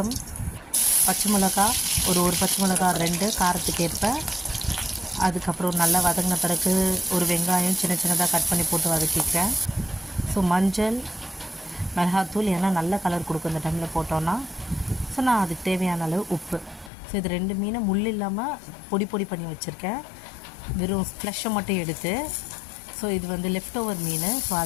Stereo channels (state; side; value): drops out; right; at 16.9 s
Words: பச்சை மிளகா, ஒரு பச்சை மிளகா 2 காரத்துக்கு ஏற்ப. அதுக்கப்புறம் நல்லா வதங்கின பிறகு ஒரு வெங்காயம் சின்னதாக கட் பண்ணி போட்டு வதக்கிக்கிறேன். ஸோ மஞ்சள், மிளகாத்தூள், ஏன்னா நல்ல கலர் கொடுக்கும் இந்த டைமில் போட்டோன்னா. ஸோ நான் அதுக்கு தேவையான அளவு உப்பு. ஸோ இது 2 மீனை முள் இல்லாமல் பொடி பண்ணி வச்சுருக்கேன். வெறும் ஃப்ளஷை மட்டும் எடுத்து. ஸோ இது லெஃப்ட் ஓவர் மீன். ஸோ